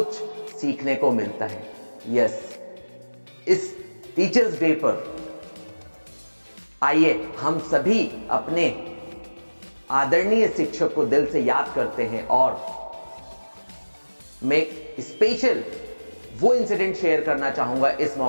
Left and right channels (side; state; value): both; inverted; correlation -1.00